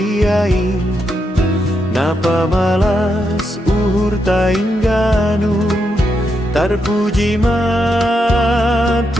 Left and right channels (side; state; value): both; normal; correlation 0.82